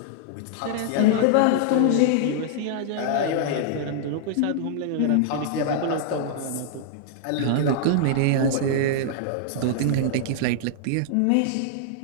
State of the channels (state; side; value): different; both; correlation -0.01